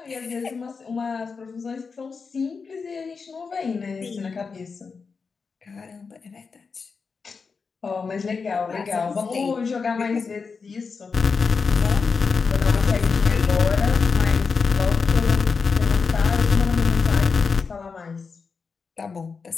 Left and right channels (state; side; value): quieter; right; 5.1 dB